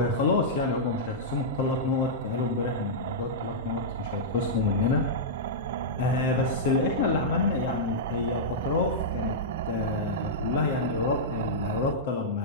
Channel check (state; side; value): normal; both; correlation -0.11